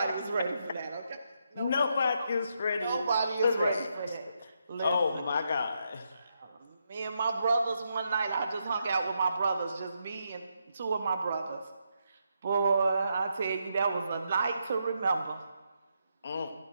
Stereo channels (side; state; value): both; inverted; correlation -0.81